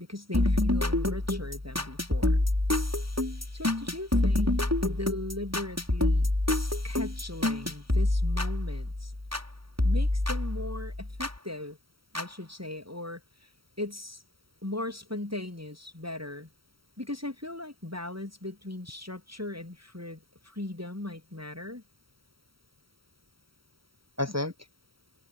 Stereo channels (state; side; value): late; left; 0.75 ms